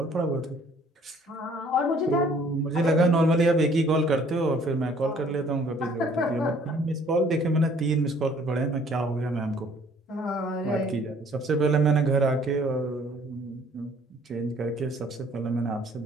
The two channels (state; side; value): normal; both; correlation 0.58